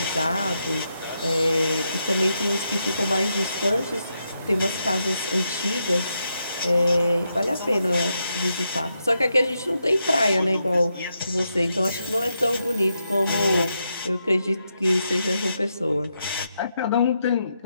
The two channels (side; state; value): both; inverted; correlation -0.83